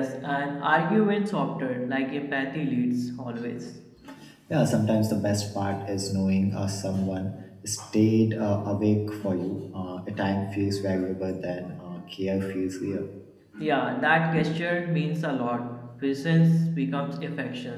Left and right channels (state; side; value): identical; both; correlation 1.00